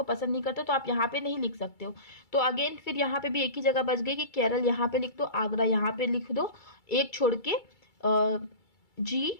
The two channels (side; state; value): right; late; 2.3 ms